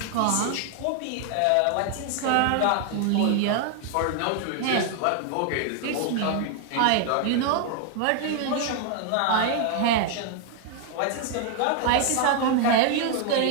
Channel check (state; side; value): different; both; correlation 0.00